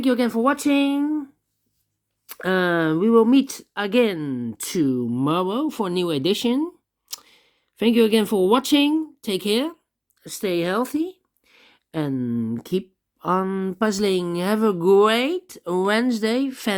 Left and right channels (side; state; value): both; identical; correlation 1.00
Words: you again for watching. We will meet again tomorrow for a new edition. Thank you again for watching. Take care, stay healthy, and keep on puzzling. Have a great Wednesday,